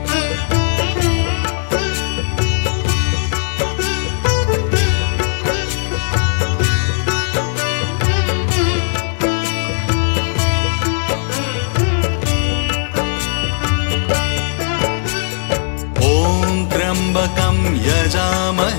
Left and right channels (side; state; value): right; silent; 67 dB below the other